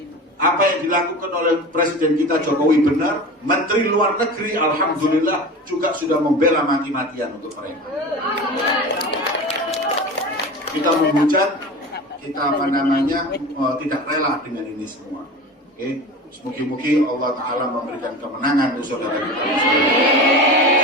apa yang dilakukan oleh Presiden kita Jokowi benar. Menteri Luar Negeri alhamdulillah juga sudah membela mati-matian untuk mereka. Kita menghujat, kita tidak rela dengan ini semua. Oke, semoga Allah Ta'ala memberikan kemenangan untuk saudara kita.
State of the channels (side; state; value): both; normal; correlation 0.32